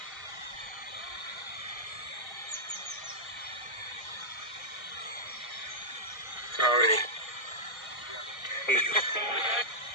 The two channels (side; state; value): right; late; 1.3 ms